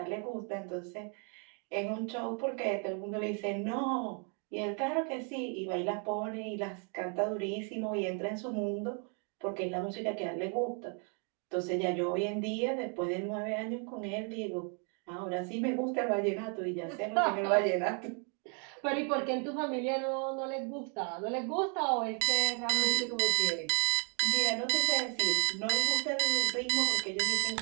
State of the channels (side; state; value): left; quieter; 39.6 dB